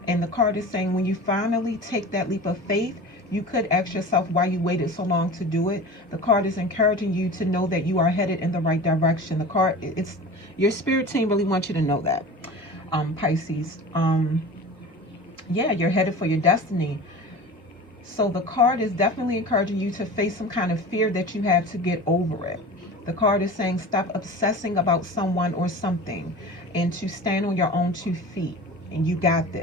And the card is saying when you finally take that leap of faith, you could ask yourself why you waited so long to do it. The card is encouraging you to know that you are headed in the right direction. The card, it's your spirit team really wants you to know that, Pisces. Yeah, you're headed for your destiny. So the card is definitely encouraging you to face some kind of fear that you have to get over it. The card is saying stop obsessing about someone or something and to stand on your own 2 feet. And you got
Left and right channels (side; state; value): both; normal; correlation 0.35